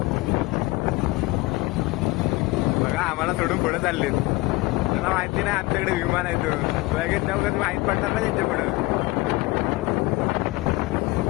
बघा आम्हाला सोडून पुढे चाललेत त्याला माहिती नाही आमच्याकडे विमान आहे तो लगेच जाऊ कधी माहित पडणार ना त्यांच्या पुढं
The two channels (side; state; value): right; quieter; 21.6 dB